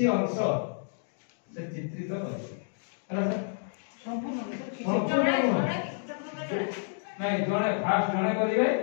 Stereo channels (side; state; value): right; silent; digital silence